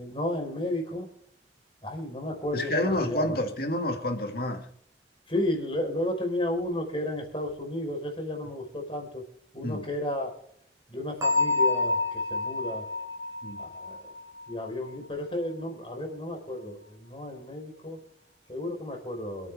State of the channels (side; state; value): both; normal; correlation 0.01